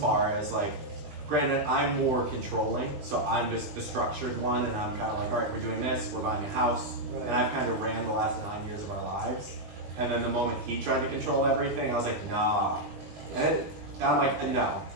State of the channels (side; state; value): left; late; 20 ms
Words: as like, granted, I'm more controlling, so I'm just the structured one, and I'm kind of like, all right, we're doing this, we're buying a house, and I've kind of ran the last 9 years of our lives. And then the moment he tried to control everything, I was like, nah. And I'm like, no.